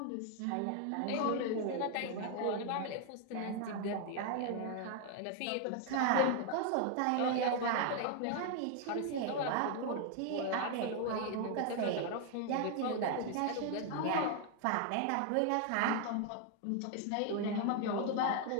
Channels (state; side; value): different; both; correlation 0.00